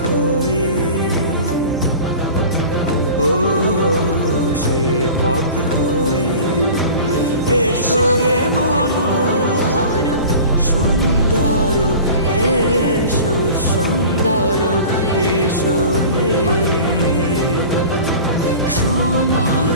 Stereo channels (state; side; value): inverted; both; correlation -0.38